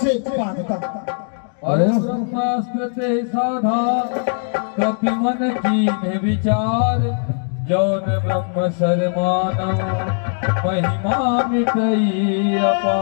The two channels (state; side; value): silent; right; digital silence